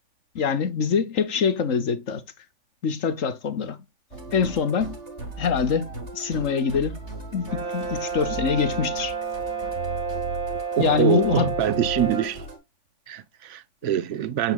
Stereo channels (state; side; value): late; right; 3.5 ms